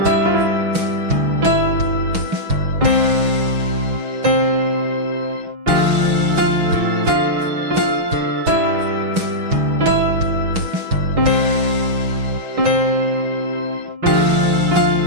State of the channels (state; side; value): late; left; 6.2 ms